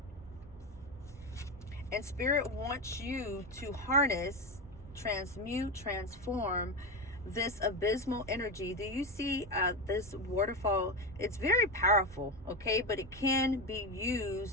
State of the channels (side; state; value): both; normal; correlation 0.16